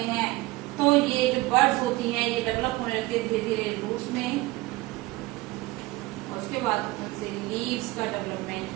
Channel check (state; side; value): quieter; left; 20.0 dB